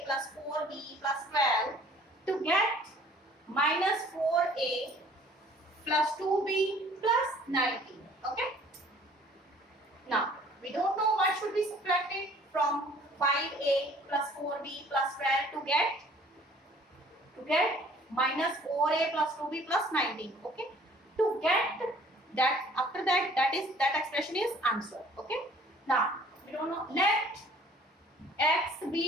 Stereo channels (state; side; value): normal; both; correlation 0.54